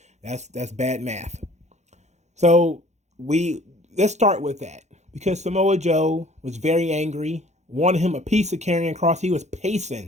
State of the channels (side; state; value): left; late; 0.33 ms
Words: That's bad math. So let's start with that, because Samoa Joe was very angry, wanted him a piece of Karrion Kross. He was